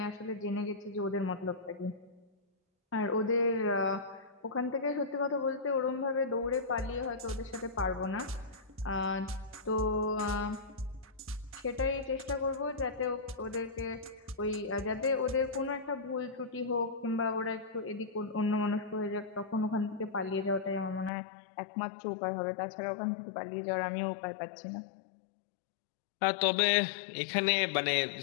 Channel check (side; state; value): right; drops out; at 21.1 s